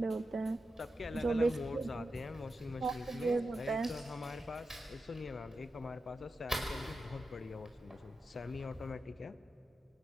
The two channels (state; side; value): normal; both; correlation 0.89